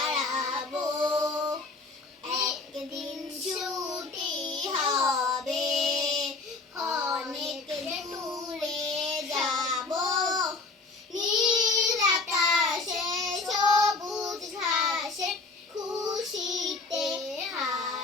একদিন ছুটি হবে, অনেক দূরে যাব, নীল আকাশে সবুজ ঘাসে খুশিতে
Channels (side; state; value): right; quieter; 3.8 dB